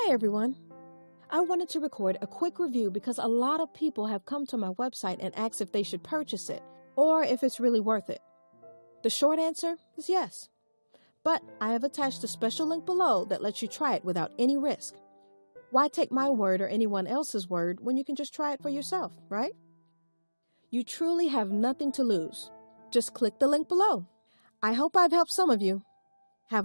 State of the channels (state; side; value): inverted; both; correlation -1.00